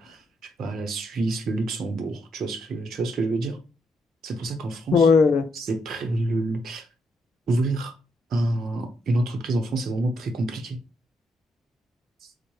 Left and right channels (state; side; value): normal; both; correlation 0.77